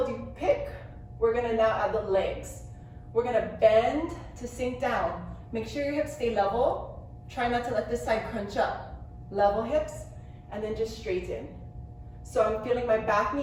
you pick, we're gonna now add the legs. We're gonna bend to sink down. Make sure your hips stay level. Try not to let this side crunch up. Level hips, and then just straighten. So I'm feeling my back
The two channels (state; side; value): identical; both; correlation 1.00